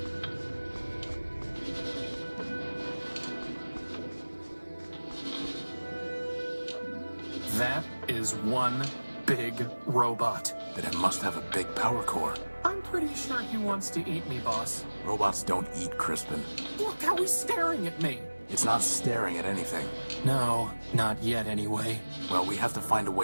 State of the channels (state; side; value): inverted; both; correlation -1.00